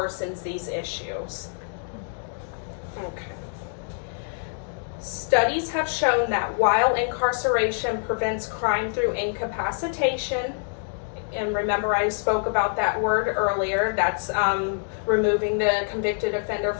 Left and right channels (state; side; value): silent; right; 60 dB below the other